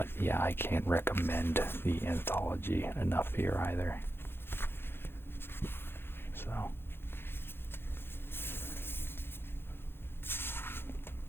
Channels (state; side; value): late; right; 0.11 ms